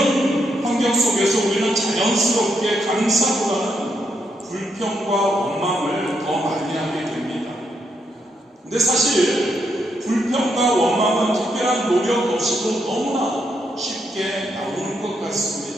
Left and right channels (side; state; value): both; normal; correlation 0.78